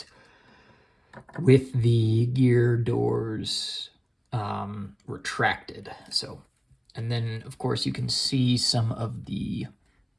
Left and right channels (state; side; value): identical; both; correlation 1.00